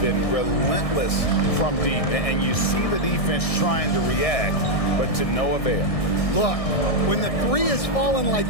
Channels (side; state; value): right; late; 1.6 ms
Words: relentless from deep. And you see the defense trying to react, but to no avail. Look, when the 3 is falling like